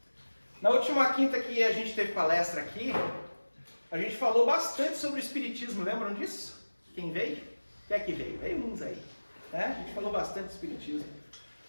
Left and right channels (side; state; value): both; inverted; correlation -1.00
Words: Na última quinta que a gente teve palestra aqui, a gente falou bastante sobre o espiritismo, lembram disso? Quem veio? Quem é que veio? Veio uns aí. Né? A gente falou bastante do espiritismo.